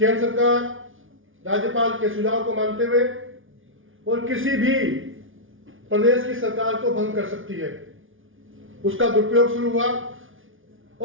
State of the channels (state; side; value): late; left; 0.58 ms